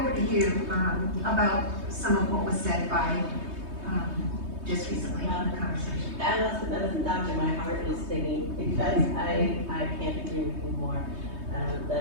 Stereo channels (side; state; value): left; late; 3.2 ms